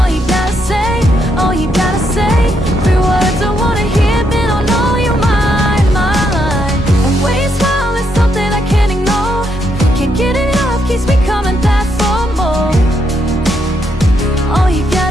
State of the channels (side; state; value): both; normal; correlation 0.77